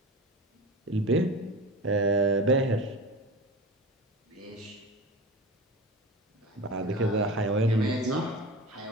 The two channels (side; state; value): both; normal; correlation 0.31